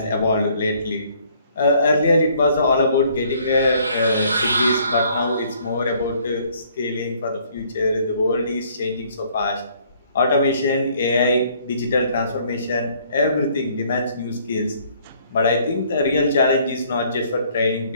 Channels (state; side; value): inverted; both; correlation -0.62